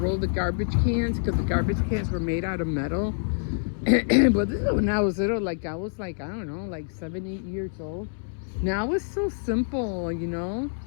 the garbage cans, because the garbage cans were made out of metal. But this is when I was little, like I was like, I don't know, like 7, 8 years old. Now it's so simple, you know.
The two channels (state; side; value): silent; right; 61 dB below the other